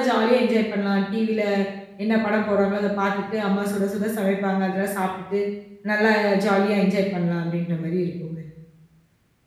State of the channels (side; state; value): both; identical; correlation 1.00